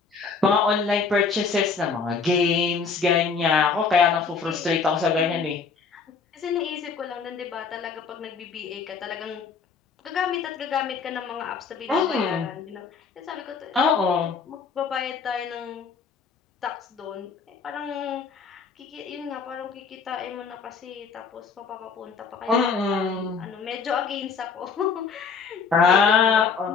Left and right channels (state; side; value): quieter; right; 5.4 dB